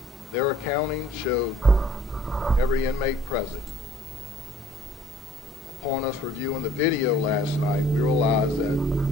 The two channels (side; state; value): both; normal; correlation 0.56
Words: Their accounting showed every inmate present. Upon us reviewing the video last night, we realized